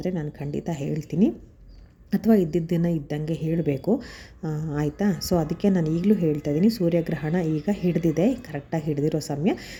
ನಾನು ಖಂಡಿತ ಹೇಳ್ತೀನಿ, ಅಥವಾ ಇದ್ದಿದ್ದನ್ನು ಇದ್ದಂಗೆ ಹೇಳಬೇಕು. ಆಯಿತಾ? ಸೊ ಅದಕ್ಕೆ ನಾನು ಈಗಲೂ ಹೇಳ್ತಾ ಇದ್ದೀನಿ, ಸೂರ್ಯಗ್ರಹಣ ಈಗ ಹಿಡಿದಿದೆ, ಕರೆಕ್ಟಾಗಿ ಹಿಡಿದಿರೋ ಸಮಯ.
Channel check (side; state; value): both; identical; correlation 1.00